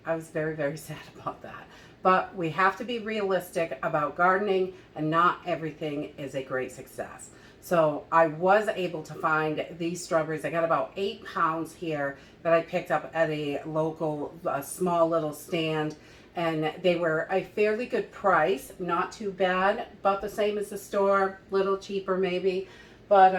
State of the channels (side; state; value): both; identical; correlation 1.00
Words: I was very, very sad about that. But we have to be realistic about gardening, and not everything is a great success. So I was able to find these strawberries. I got about 8 pounds here that I picked up at a local, small little stand. And they were a fairly good price, not too bad, about the same as the store, little cheaper maybe. But